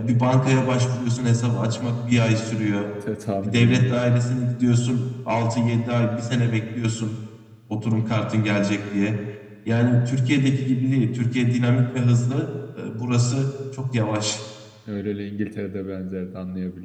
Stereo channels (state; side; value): identical; both; correlation 1.00